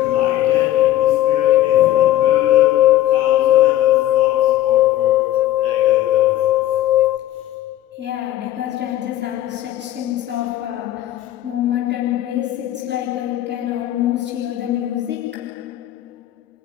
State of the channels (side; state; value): right; quieter; 13.9 dB